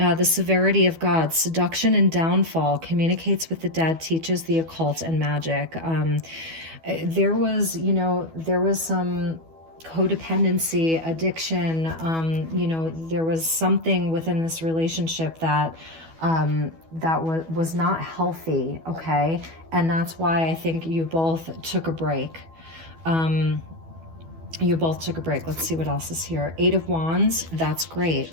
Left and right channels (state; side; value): late; left; 12 ms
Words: severity of God, seduction and downfall, communicates with the dead, teaches the occult and magic. There was, you know, there was some codependency, addiction, you know, there was something within this relationship that was not healthy, okay? And that's why I think you both took a break. You both took a break. Let's see what else is here. Eight of Wands, that's